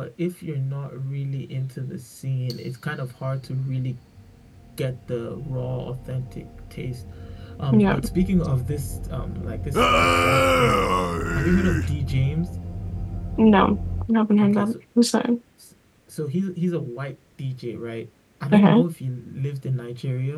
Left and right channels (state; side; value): identical; both; correlation 1.00